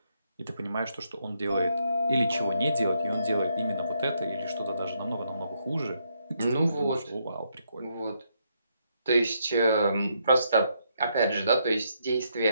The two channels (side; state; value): both; inverted; correlation -0.76